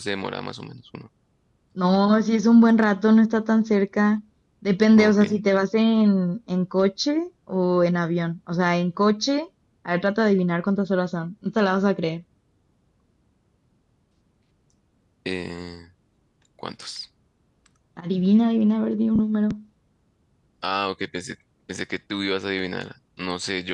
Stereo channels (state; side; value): identical; both; correlation 1.00